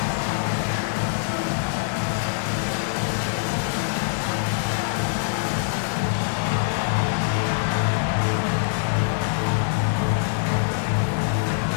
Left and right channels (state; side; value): silent; right; digital silence